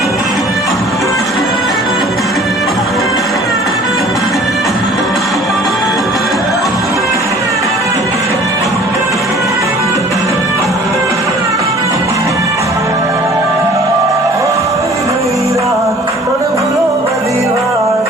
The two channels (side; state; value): both; normal; correlation 0.50